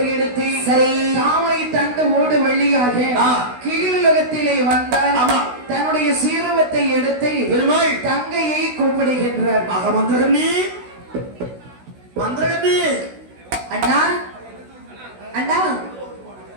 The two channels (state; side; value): late; left; 16 ms